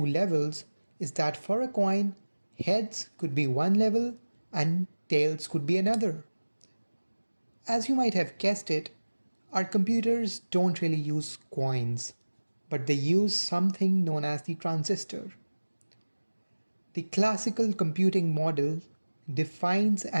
levels is that for a coin, heads could be one level and tails could be another. As you might have guessed it, our computers don't really use coins, but they use something known as the transistor. The classical computing model defines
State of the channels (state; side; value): inverted; both; correlation -1.00